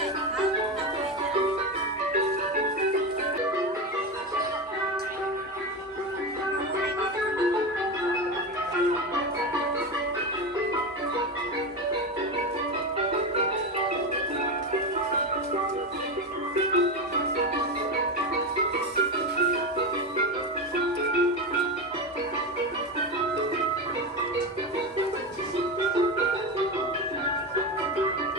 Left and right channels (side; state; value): both; normal; correlation 0.18